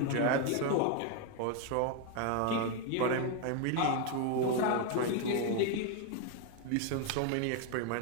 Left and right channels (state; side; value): different; both; correlation 0.01